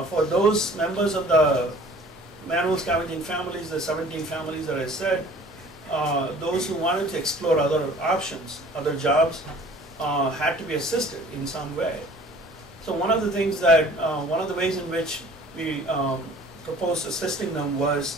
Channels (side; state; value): both; normal; correlation 0.50